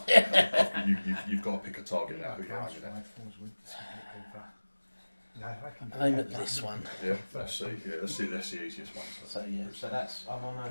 You've got to pick a target now. Who you're aiming at? Aim at this one. Yeah. Let's see. Yeah. That's the easiest one. So yeah. So that's I'm on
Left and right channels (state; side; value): inverted; both; correlation -1.00